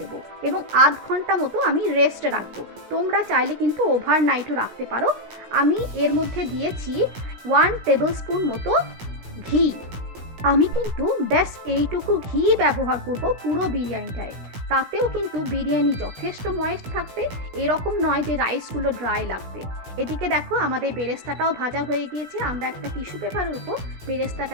এবং আধ ঘন্টা মতো আমি রেস্টে রাখবো। তোমরা চাইলে কিন্তু ওভারনাইটও রাখতে পারো। আমি এর মধ্যে দিয়েছি 1 টেবিল স্পুন মতো ঘি। আমি কিন্তু ব্যাস এইটুকু ঘি ব্যবহার করব পুরো বিরিয়ানিটায়। তাতেও কিন্তু বিরিয়ানি যথেষ্ট ময়েস্ট থাকবে, এরকম নয় যে রাইসগুলো ড্রাই লাগবে। এদিকে দেখো আমাদের বেরেস্তাটাও ভাজা হয়ে গিয়েছে। আমরা একটা টিস্যু পেপারের উপর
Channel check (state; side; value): late; left; 17 ms